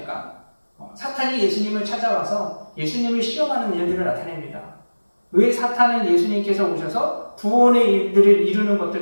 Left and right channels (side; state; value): both; inverted; correlation -1.00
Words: 사탄이 예수님을 찾아와서 예수님을 시험하는 일들을 나타냅니다. 왜 사탄은 예수님께서 오셔서 구원의 일들을 이루는